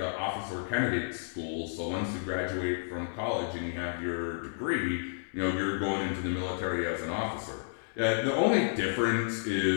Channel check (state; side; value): silent; right; digital silence